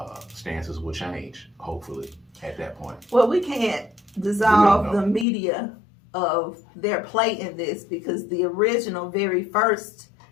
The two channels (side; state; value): right; drops out; at 5.2 s